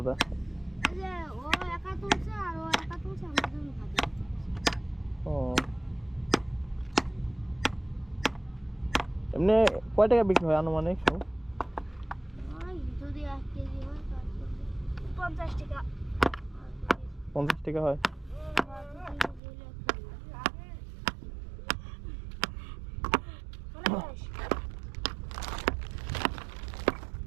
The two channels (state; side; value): drops out; left; at 19.4 s